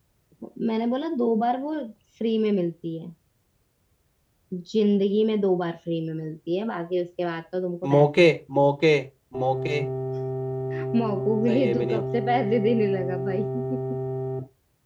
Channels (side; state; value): both; identical; correlation 1.00